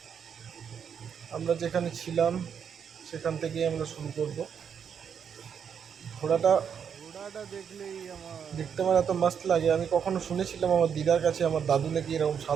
আমরা যেখানে ছিলাম সেখান থেকেই আমরা শুরু করব। ঘোড়াটা ঘোড়াটা দেখলেই আমার দেখতে আমার এত মাস্ত লাগে। আমি কখনো শুনেছিলাম আমার দিদার কাছে আমার দাদু নাকি এরকম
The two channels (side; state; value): left; quieter; 7.5 dB